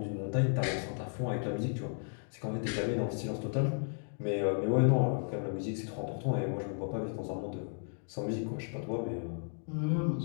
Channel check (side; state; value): right; silent; 55 dB below the other